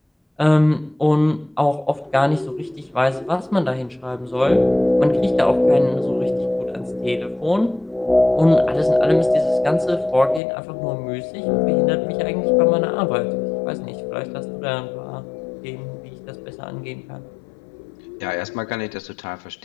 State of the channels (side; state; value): right; drops out; at 10.4 s